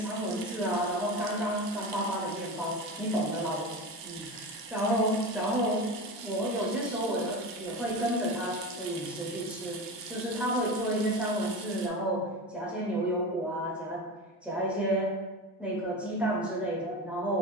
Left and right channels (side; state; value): both; normal; correlation 0.26